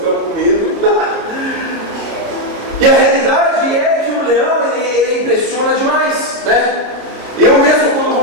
com medo. E a realidade é que o leão, ele impressiona demais, né? Eu mesmo, quando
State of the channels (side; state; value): left; late; 29 ms